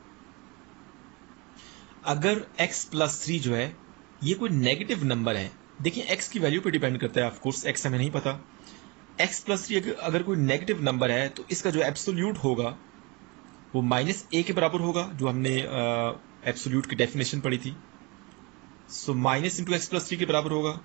अगर x प्लस 3 जो है ये कोई नेगेटिव नंबर है, देखिए x की वैल्यू पे डिपेंड करता है, ऑफ कोर्स x हमें नहीं पता। x प्लस 3 अगर कोई नेगेटिव नंबर है तो इसका जो एब्सोल्यूट होगा वो -a के बराबर होगा, जो हमने एब्सोल्यूट की डेफिनेशन पढ़ी थी। So minus into X plus 3 के बराबर होगा।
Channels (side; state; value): left; quieter; 27.8 dB